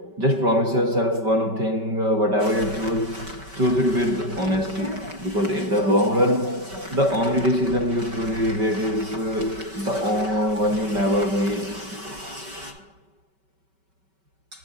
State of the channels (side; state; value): left; late; 5.2 ms